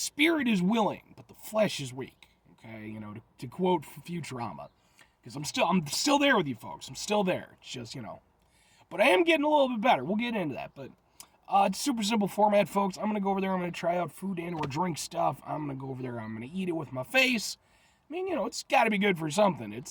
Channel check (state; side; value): identical; both; correlation 1.00